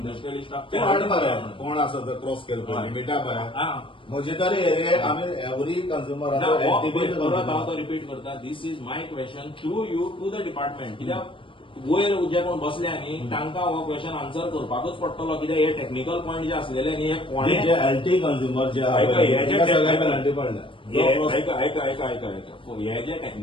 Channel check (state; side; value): late; right; 0.25 ms